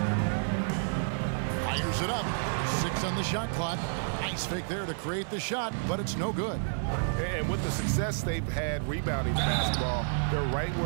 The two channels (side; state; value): left; silent; 58 dB below the other